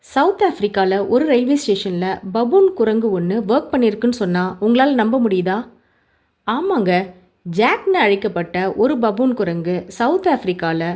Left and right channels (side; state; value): both; identical; correlation 1.00